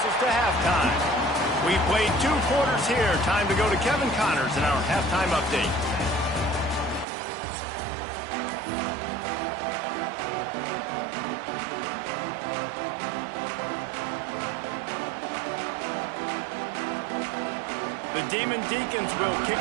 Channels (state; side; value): drops out; left; at 7.1 s